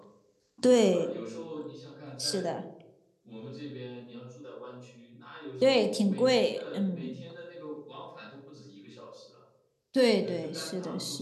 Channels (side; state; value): both; identical; correlation 1.00